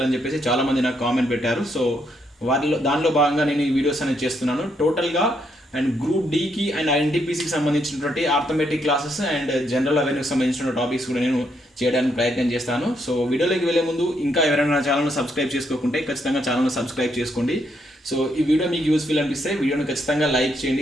అని చెప్పేసి చాలామంది నాకు కామెంట్ పెట్టారు. సో దానిలో భాగంగా నేను ఈ వీడియోస్ అనేది చేస్తున్నాను. టోటల్గా అండ్ గ్రూప్ డికి అండ్ ఎన్టీపీసీకి సంబంధించినటువంటి ఆర్థమెటిక్ క్లాసెస్ అండ్ జనరల్ అవేర్నెస్కి సంబంధించిన టాపిక్స్ కూడా నేను చేయడానికి ప్రయత్నం చేస్తాను. సో వీడియోలోకి వెళ్ళే ముందు ఇంకా ఎవరైనా నా ఛానల్ని సబ్స్క్రైబ్ చేసుకోకుంటే ఖచ్చితంగా ఛానల్ని సబ్స్క్రైబ్ చేసుకోండి. సో ఈ వీడియో మీకు యూస్ఫుల్ అనిపిస్తే వీడియోని ఖచ్చితంగా లైక్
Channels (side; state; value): both; normal; correlation 0.75